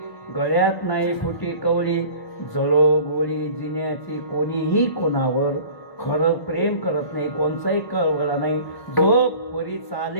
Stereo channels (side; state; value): right; late; 1.1 ms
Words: गळ्यात नाही फुटी कवळी जळो गोळी जिन्याची. कोणीही कोणावर खरं प्रेम करत नाही, कोणचाही कळवळा नाही. जो वरी